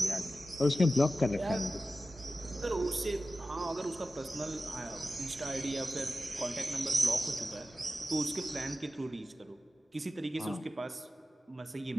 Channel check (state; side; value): normal; both; correlation 0.94